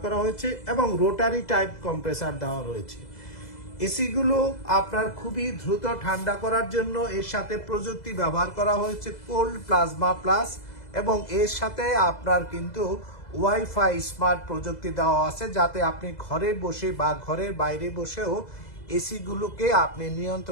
করা হয়েছে এবং রোটারি টাইপ কম্প্রেসার দেওয়া রয়েছে। এসিগুলো আপনার খুবই দ্রুত ঠান্ডা করার জন্য এর সাথে প্রযুক্তি ব্যবহার করা হয়েছে কোল্ড প্লাজমা প্লাস, এবং এর সাথে আপনার কিন্তু ওয়াইফাই স্মার্ট প্রযুক্তি দেওয়া আছে, যাতে আপনি ঘরে বসে বা ঘরের বাইরে বসেও এসিগুলোকে আপনি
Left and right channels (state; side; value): late; right; 2.0 ms